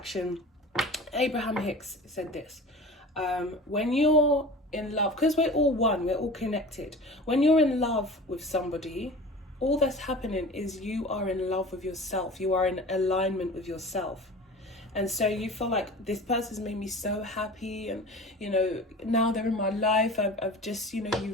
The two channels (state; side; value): normal; both; correlation 0.38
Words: Abraham Hicks said this, when you're in love, because we're all one, we're all connected. When you're in love with somebody, all that's happening is you are in love with yourself. You are in alignment with yourself. And so you feel like, this person's made me so happy, and you know, now they're in my life. I've just, you